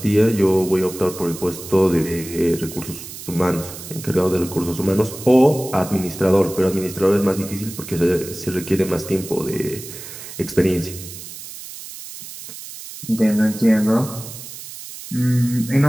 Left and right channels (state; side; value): noise; right; hiss, 13 dB below the sound